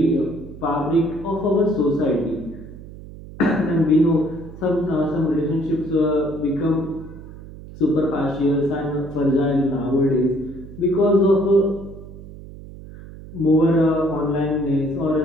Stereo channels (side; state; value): right; noise; hum, 15 dB below the sound